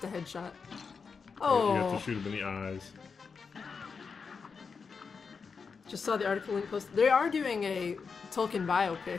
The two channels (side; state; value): right; quieter; 5.4 dB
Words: a headshot. You have Oh, to shoot him in the eyes. just saw the article link posted. They are doing a Tolkien